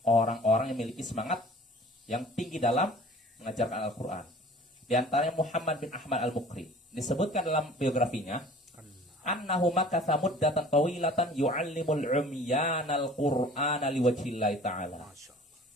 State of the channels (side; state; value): both; normal; correlation 0.47